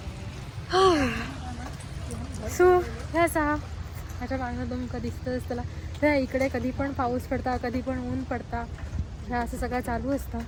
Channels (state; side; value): identical; both; correlation 1.00